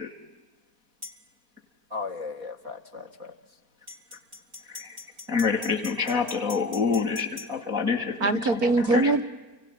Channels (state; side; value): late; left; 4.1 ms